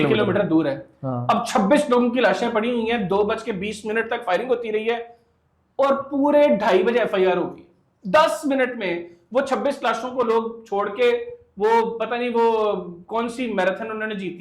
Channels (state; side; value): identical; both; correlation 1.00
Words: किलोमीटर दूर है। हाँ। अब 26 लोगों की लाशें पड़ी हुई हैं, 2:20 तक फायरिंग होती रही है, और पूरे 2:30 बजे FIR होगी। 10 मिनट में वो 26 लाशों को लोग छोड़ के, वो पता नहीं वो कौन सी मैराथन उन्होंने